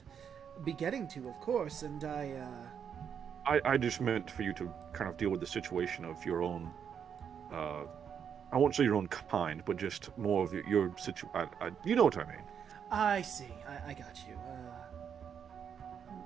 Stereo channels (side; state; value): left; quieter; 7.8 dB